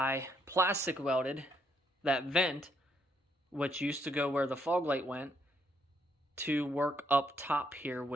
plastic welded that vent, which used to go where the fog light went, to work up top here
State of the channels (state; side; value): normal; both; correlation 0.73